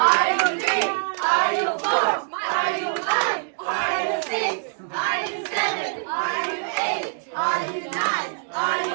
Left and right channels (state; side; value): silent; left; digital silence